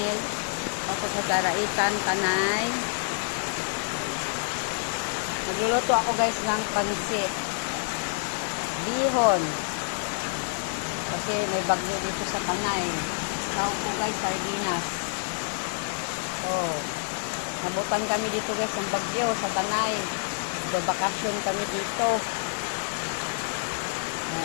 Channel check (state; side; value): silent; right; digital silence